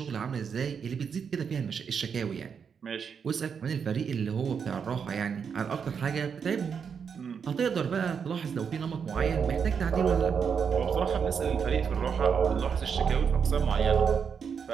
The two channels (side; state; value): left; quieter; 6.7 dB